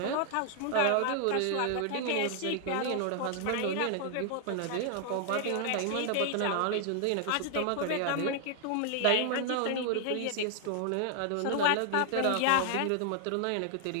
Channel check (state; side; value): different; both; correlation 0.00